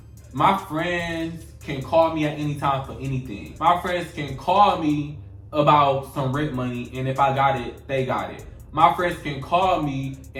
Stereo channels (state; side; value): identical; both; correlation 1.00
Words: my friends can call me at any time for anything. My friends can call me about some rent money, and if I got it, they got it. My friends can call me